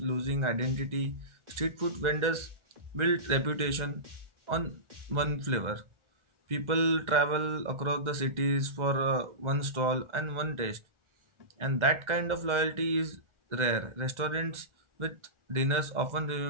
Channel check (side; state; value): left; late; 1.4 ms